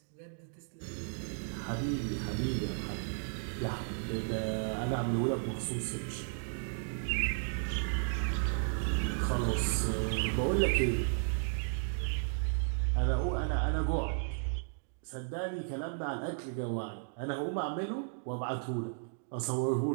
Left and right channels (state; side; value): silent; left; digital silence